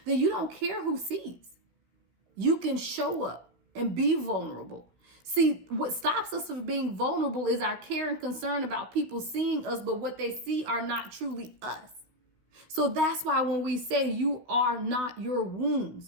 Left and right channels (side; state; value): left; late; 16 ms